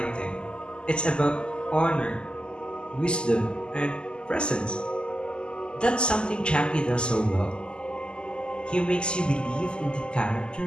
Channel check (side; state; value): right; late; 0.049 ms